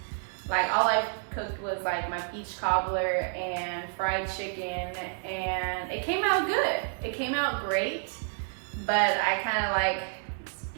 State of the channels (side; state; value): left; silent; 58 dB below the other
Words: Like all I cooked was like my peach cobbler and fried chicken, and it came out good. It came out great, but I kind of like